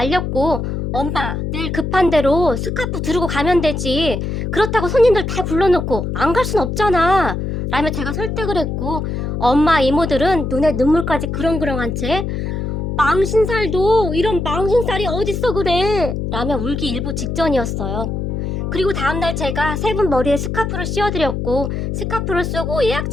엄마 내일 급한 대로 스카프 두르고 가면 되지. 그렇다고 손님들 다 불러놓고 안 갈 순 없잖아. 라며 제가 설득을 했고, 엄마 이모들은 눈에 눈물까지 그렁그렁한 채 망신살도 이런 망신살이 어딨어 그래 라며 울기 일보 직전이었어요. 그리고 다음날 제가 세 분 머리에 스카프를 씌워드렸고 스카프를 쓰고 예약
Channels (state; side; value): noise; left; hum, 3 dB below the sound